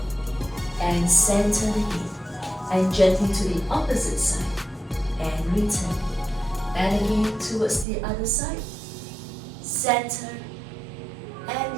and center the head and gently to the opposite side and return. And again towards the other side, center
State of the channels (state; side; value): drops out; left; at 7.9 s